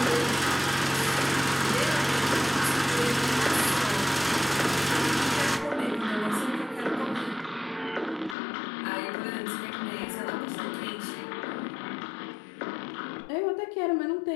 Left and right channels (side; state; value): right; drops out; at 8.3 s